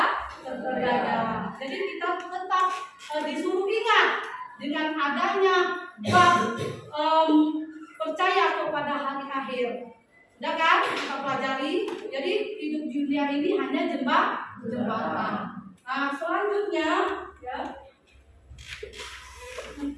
Jadi kita tetap disuruh ingat dengan adanya bab percaya kepada hari akhir. Udah kan kita pelajari. Jadi hidup dunia ini hanya jembatan. Nah, selanjutnya ya.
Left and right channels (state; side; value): identical; both; correlation 1.00